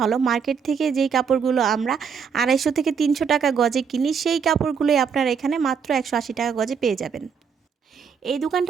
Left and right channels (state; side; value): quieter; left; 6.5 dB